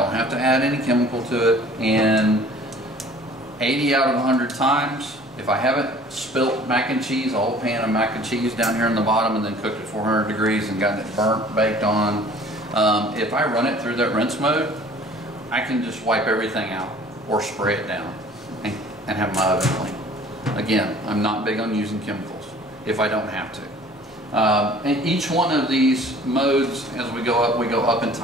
have to add any chemical to it, and 80 out of 100 times, if I haven't spilt mac and cheese, a whole pan of mac and cheese down here in the bottom and then cooked at 400 degrees and gotten it burnt, baked on, if I run it through that rinse mode, I can just wipe everything out or spray it down and have my oven clean. Again, I'm not big on using chemicals if I don't have to. And each one of these modes, as we go up in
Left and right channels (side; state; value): both; normal; correlation 0.50